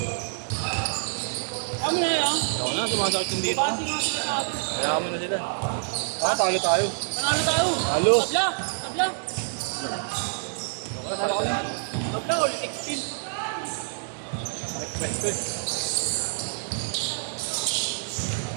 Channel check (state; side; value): silent; left; 60 dB below the other